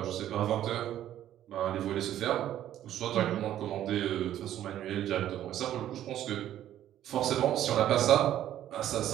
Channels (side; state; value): left; quieter; 11.9 dB